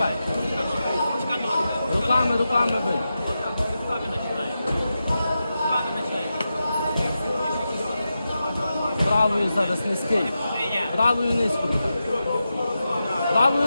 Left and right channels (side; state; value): both; inverted; correlation -0.90